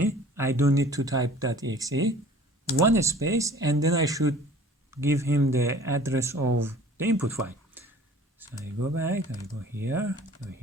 I don't need to type .exe, one space, and then I should give him the address of the input file. So I go back, I go here,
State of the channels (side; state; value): both; normal; correlation 0.49